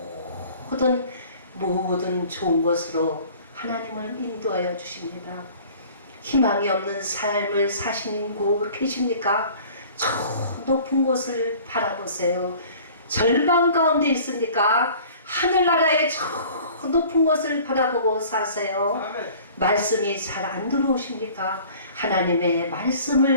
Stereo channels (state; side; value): inverted; both; correlation -0.48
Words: 모든 좋은 것으로 하나님을 인도하여 주십니다. 희망이 없는 삶을 사시고 계십니까? 저 높은 곳을 바라보세요. 절망 가운데 있습니까? 하늘나라의 저 높은 곳을 바라보고 사세요. 말씀이 잘 안 들어오십니까? 하나님의